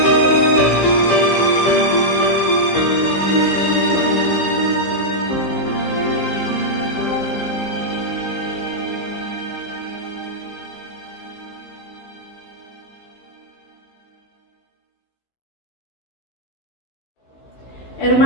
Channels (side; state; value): right; late; 15 ms